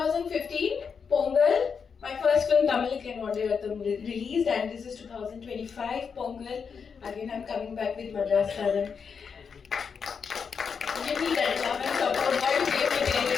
Pongal, my first film Tamil and Vadayatham released, and this is 2025 Pongal. Again I'm coming back with Madras Karan. Give me that love and support. God gave me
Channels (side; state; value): right; quieter; 6.1 dB